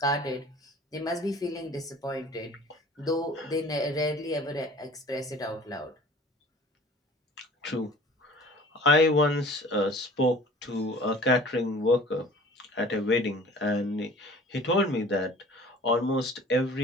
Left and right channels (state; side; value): normal; both; correlation 0.47